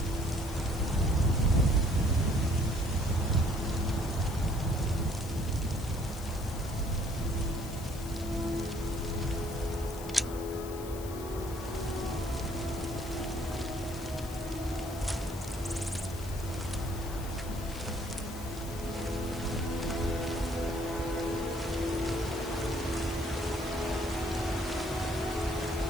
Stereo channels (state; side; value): noise; left; hiss, 14 dB below the sound